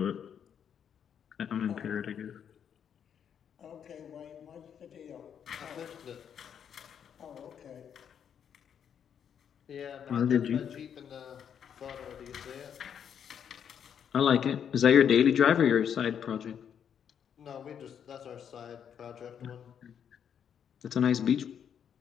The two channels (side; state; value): right; quieter; 8.3 dB